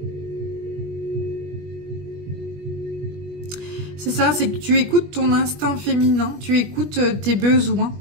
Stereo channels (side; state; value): left; late; 21 ms